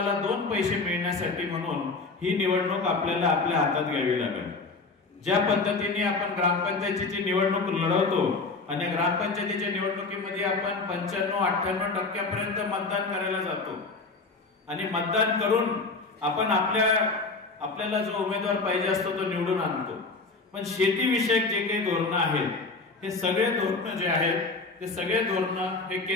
2 पैसे मिळण्यासाठी म्हणून ही निवडणूक आपल्याला आपल्या हातात घ्यावी लागेल. ज्या पद्धतीने आपण ग्रामपंचायतीची निवडणूक लढवतो आणि ग्रामपंचायतीच्या निवडणुकीमध्ये आपण 95-98% मतदान करायला जातो आणि मतदान करून आपण आपल्याला जो उमेदवार पाहिजे असतो तो निवडून आणतो. पण शेतीविषयक जे काही धोरणं आहेत हे सगळे धोरणं जे आहेत ते सगळे धोरणं हे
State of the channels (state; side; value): quieter; right; 3.8 dB